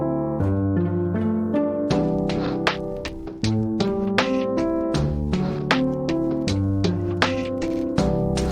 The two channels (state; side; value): identical; both; correlation 1.00